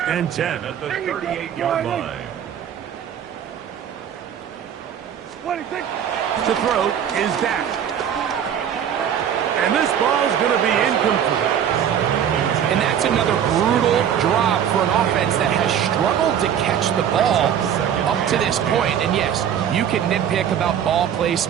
and 10. At the 38-yard line. To throw is Dak. And this ball is going to be incomplete. And that's another brutal drop for an offense that has struggled to catch the ball up to this point. And yes, you can nitpick about ball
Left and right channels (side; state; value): left; quieter; 9.1 dB